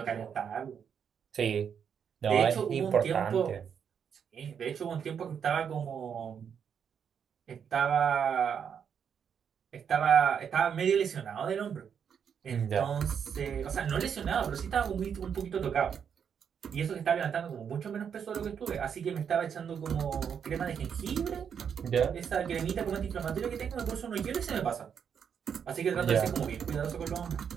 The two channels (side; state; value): left; quieter; 7.5 dB